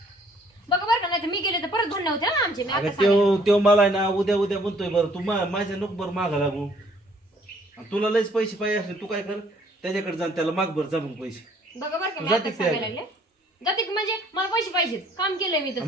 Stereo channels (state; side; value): normal; both; correlation 0.61